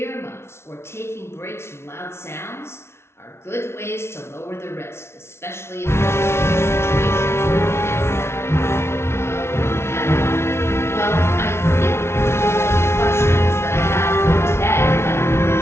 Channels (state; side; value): late; right; 0.12 ms